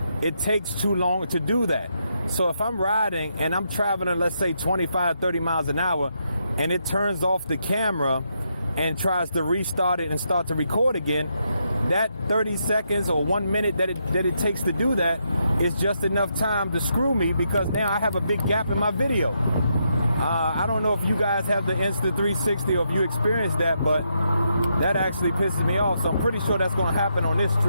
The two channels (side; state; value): both; inverted; correlation -0.79